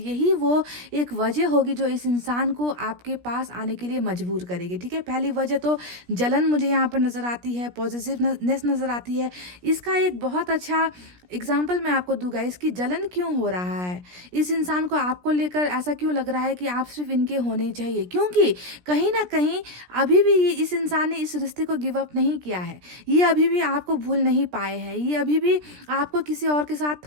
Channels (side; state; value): left; late; 17 ms